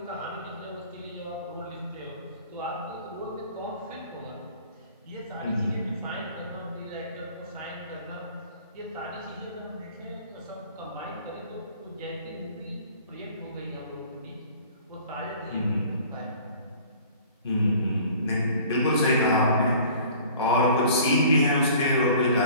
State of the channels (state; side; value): inverted; both; correlation -0.48